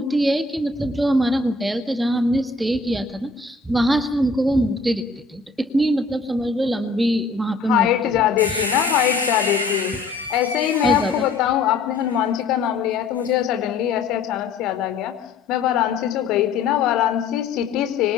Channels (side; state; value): right; quieter; 4.1 dB